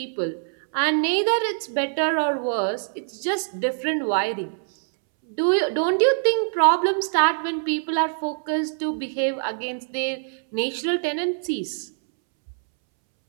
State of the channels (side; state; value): left; silent; 63 dB below the other